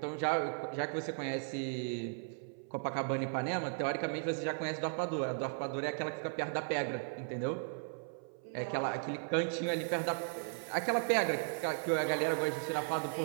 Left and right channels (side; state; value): left; silent; 54 dB below the other